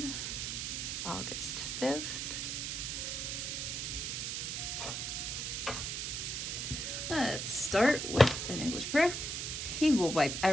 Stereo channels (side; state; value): right; noise; hiss, 3 dB below the sound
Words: August 5th. Let's start with an English prayer. He will wipe